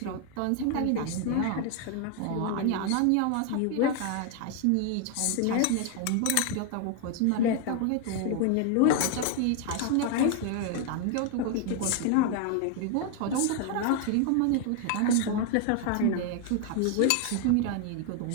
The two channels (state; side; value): different; both; correlation 0.01